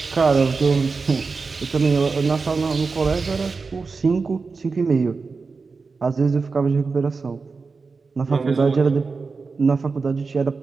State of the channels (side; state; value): left; quieter; 4.5 dB